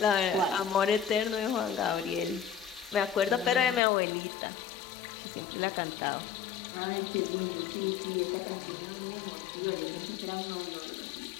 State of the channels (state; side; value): drops out; right; at 3.8 s